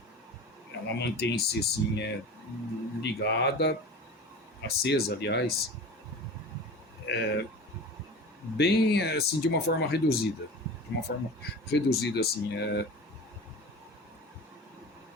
ligada, acesa, aliás, bem assim de uma forma reduzida, assim,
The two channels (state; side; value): normal; both; correlation 0.34